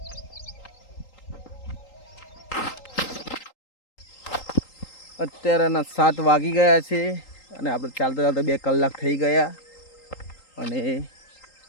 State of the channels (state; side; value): late; right; 3.8 ms